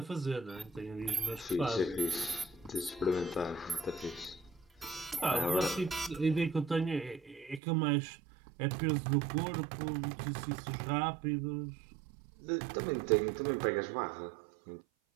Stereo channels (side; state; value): left; drops out; at 7.6 s